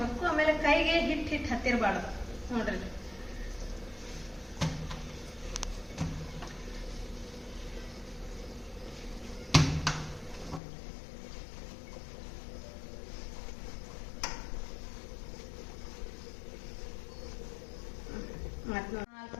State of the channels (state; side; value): drops out; right; at 10.6 s